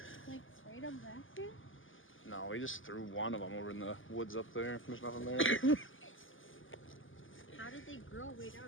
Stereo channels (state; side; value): late; right; 0.58 ms